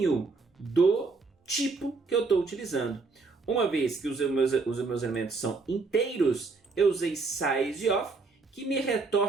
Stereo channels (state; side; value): quieter; left; 4.1 dB